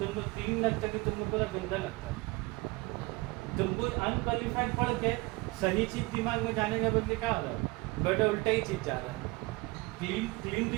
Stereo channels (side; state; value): left; quieter; 23.6 dB